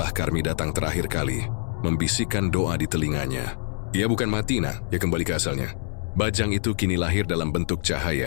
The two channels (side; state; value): right; silent; 62 dB below the other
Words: Karmi datang terakhir kali, membisikkan doa di telinganya. "Ia bukan mati, Nak, ia kembali ke asalnya. Bajang itu kini lahir dalam bentuk